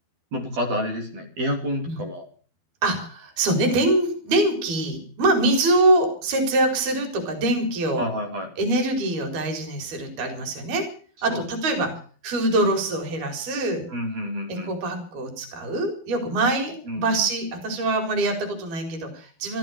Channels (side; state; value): left; late; 12 ms